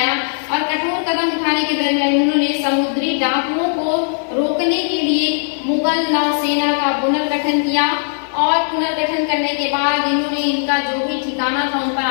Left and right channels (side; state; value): right; silent; digital silence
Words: और कठोर कदम उठाने के दरमियान उन्होंने समुद्री डाकुओं को रोकने के लिए मुगल नौसेना का पुनर्गठन किया और पुनर्गठन करने के बाद इन्होंने इनका जो भी ठिकाना था उन पर